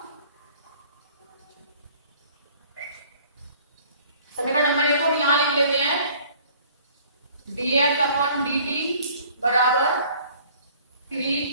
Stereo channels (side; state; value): both; inverted; correlation -0.54